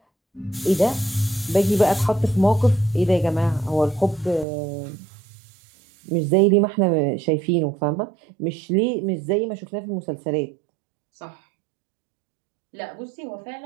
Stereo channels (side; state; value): left; drops out; at 4.5 s